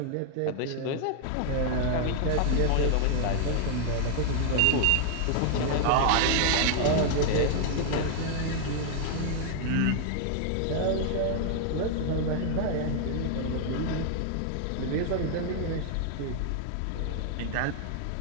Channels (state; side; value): different; both; correlation 0.00